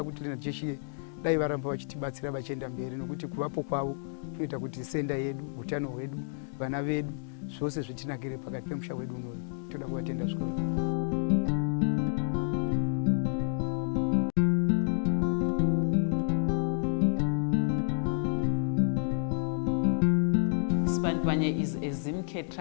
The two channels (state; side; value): silent; right; digital silence